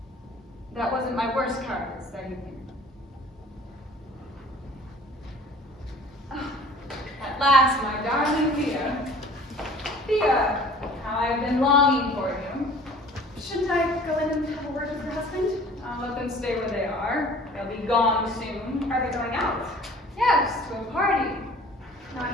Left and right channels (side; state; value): both; normal; correlation 0.48